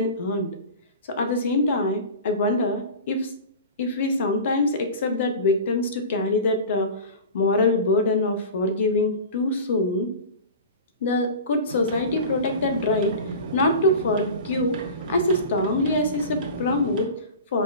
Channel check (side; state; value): both; inverted; correlation -0.33